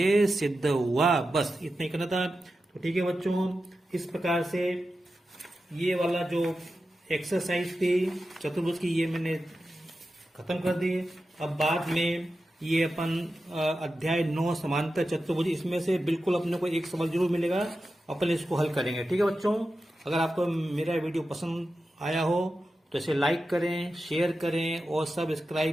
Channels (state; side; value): normal; both; correlation 0.92